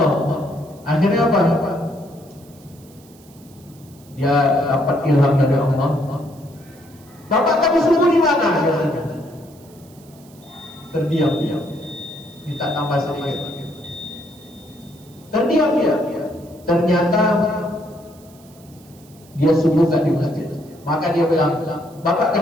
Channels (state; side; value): noise; right; hiss, 26 dB below the sound